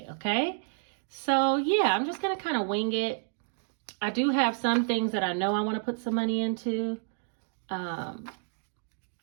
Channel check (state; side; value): silent; left; digital silence